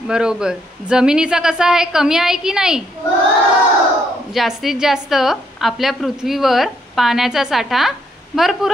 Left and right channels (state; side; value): normal; both; correlation 0.73